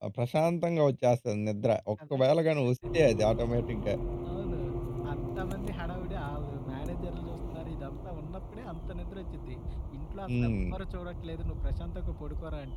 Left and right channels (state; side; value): identical; both; correlation 1.00